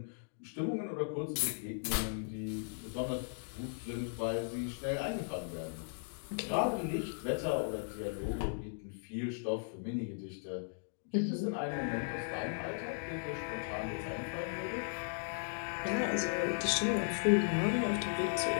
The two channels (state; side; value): silent; right; digital silence